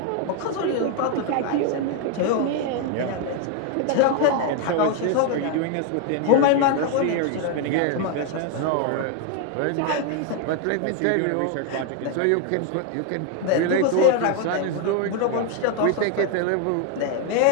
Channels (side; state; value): both; different; correlation 0.01